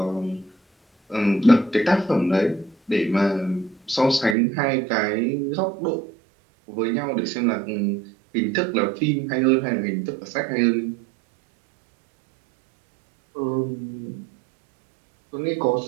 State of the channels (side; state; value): left; drops out; at 4.4 s